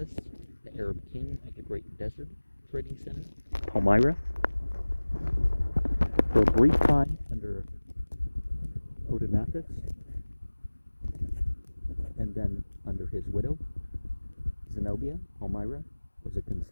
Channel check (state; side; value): inverted; both; correlation -1.00